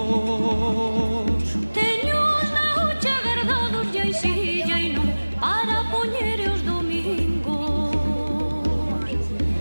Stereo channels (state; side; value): inverted; both; correlation -1.00